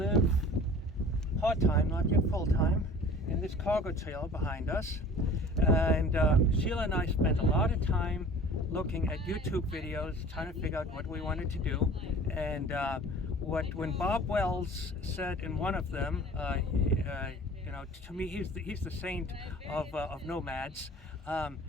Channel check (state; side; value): normal; both; correlation 0.45